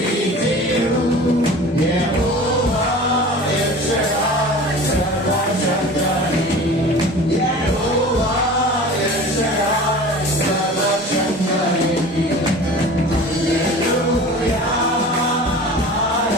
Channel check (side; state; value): both; normal; correlation 0.39